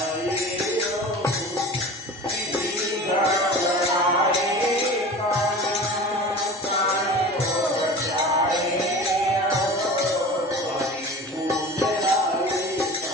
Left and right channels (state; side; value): normal; both; correlation 0.37